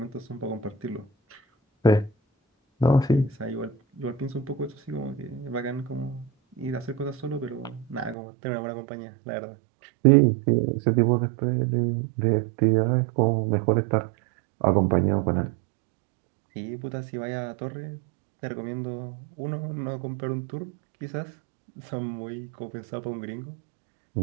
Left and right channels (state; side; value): drops out; left; at 8.2 s